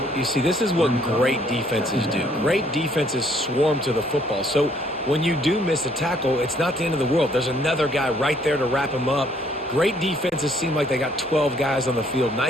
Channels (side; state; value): both; normal; correlation 0.64